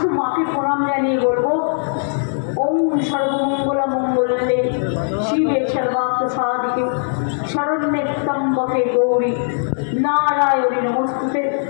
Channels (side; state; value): right; silent; digital silence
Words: মাকে প্রণাম জানিয়ে বলবো, ওম সর্বমঙ্গলা মঙ্গলে শিবে সর্বার্থ সাধিকে শরণ্যে ত্র্যম্বকে গৌরী নারায়ণী নমস্তুতে।